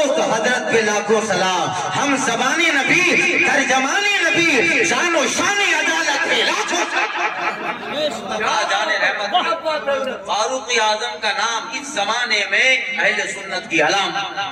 حضرت پہ لاکھوں سلام. ہم زبان نبی، ترجمان نبی، شان و شان عدالت پہ لاکھوں جان رحمت. فاروق اعظم کا نام اس زمانے میں اہل سنت کی علامت.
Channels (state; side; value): identical; both; correlation 1.00